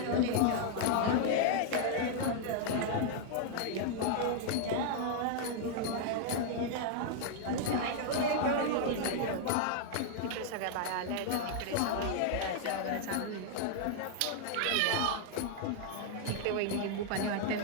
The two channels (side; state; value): both; different; correlation -0.01